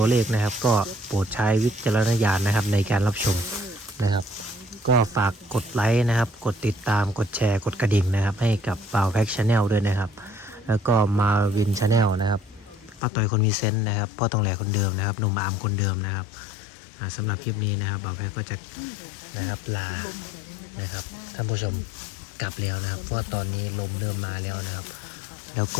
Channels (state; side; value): drops out; right; at 13.0 s